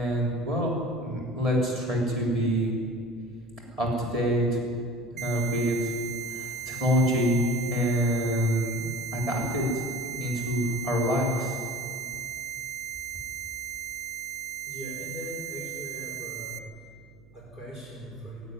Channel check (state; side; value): noise; right; hum, 25 dB below the sound